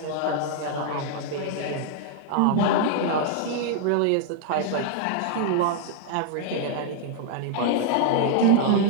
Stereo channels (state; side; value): different; both; correlation -0.01